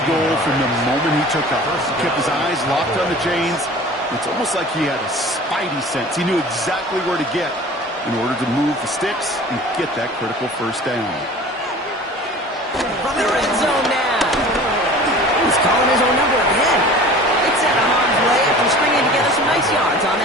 goal from the moment he took off. He kept his eyes locked on the chains. It's almost like he had a spidey sense. He knew exactly where to get in order to move the sticks and get that critical 1st down. From the red zone now. He's calling his own number again. It's out of harm's way after stringing together some nice yards on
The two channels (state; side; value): normal; both; correlation 0.42